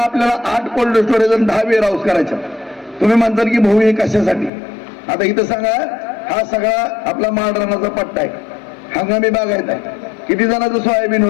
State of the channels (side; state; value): right; drops out; at 4.5 s